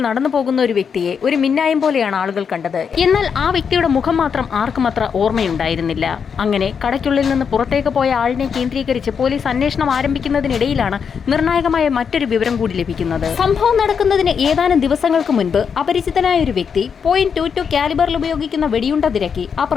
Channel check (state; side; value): quieter; right; 6.7 dB